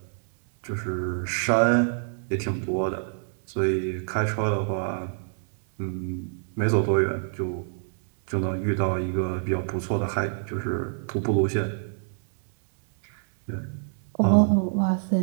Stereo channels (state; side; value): silent; left; digital silence